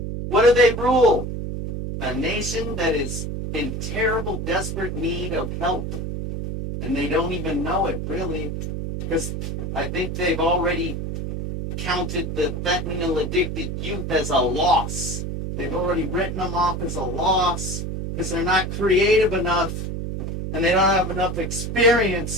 What do they rule? A nation that is in terrible, desperate need of help. And they don't even know it, really. Because I think they've already counted the fentanyl-addicted youth as a loss. They've already written them off as a loss because they're not creative enough and they don't have enough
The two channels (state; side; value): noise; right; hum, 4 dB below the sound